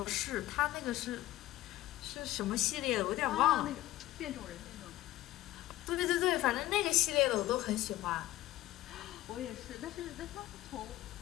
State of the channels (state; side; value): quieter; right; 15.7 dB